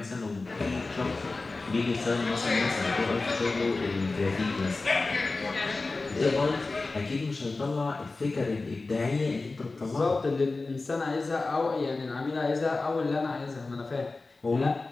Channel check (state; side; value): quieter; right; 3.5 dB